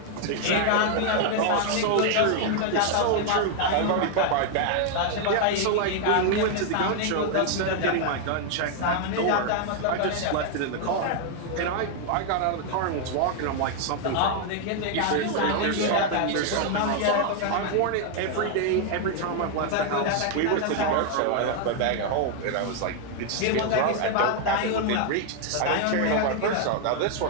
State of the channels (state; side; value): different; both; correlation 0.00